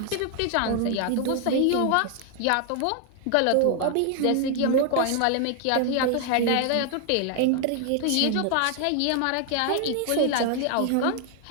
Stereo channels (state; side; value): different; both; correlation 0.00